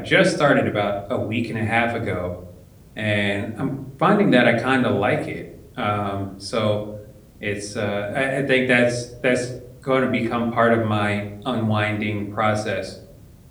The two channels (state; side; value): identical; both; correlation 1.00